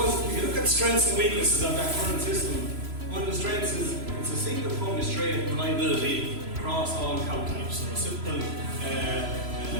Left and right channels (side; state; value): left; late; 3.0 ms